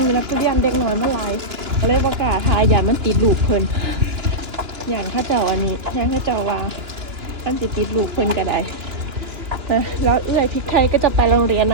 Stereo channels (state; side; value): late; left; 2.8 ms